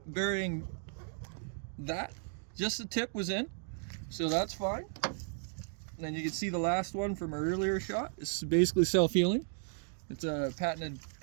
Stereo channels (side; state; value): left; silent; 55 dB below the other